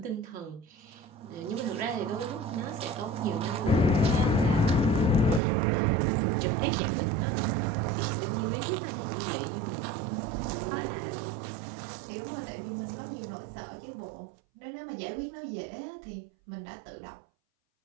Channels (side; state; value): left; drops out; at 5.4 s